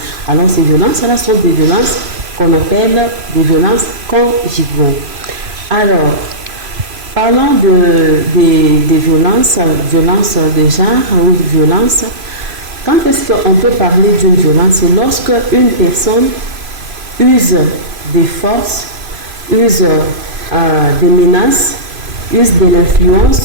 Alors ces violences-là sont des violences qu'on appelle des violences conjugaux. Alors, parlant des violences de genre ou de violence, quand est-ce qu'on peut parler d'une violence? C'est lorsque une personne use des forces, use des menaces, use de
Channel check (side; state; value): left; late; 3.0 ms